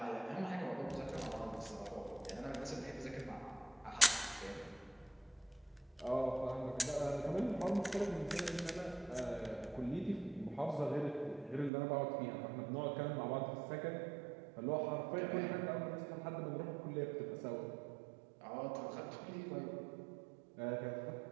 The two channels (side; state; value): left; drops out; at 11.7 s